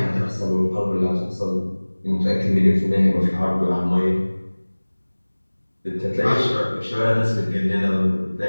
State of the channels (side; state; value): both; inverted; correlation -1.00